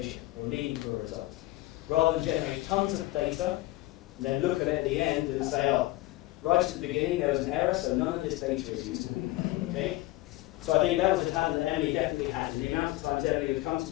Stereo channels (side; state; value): right; quieter; 18.7 dB